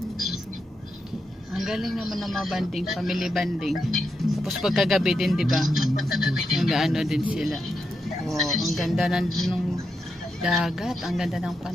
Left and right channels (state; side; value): normal; both; correlation 0.85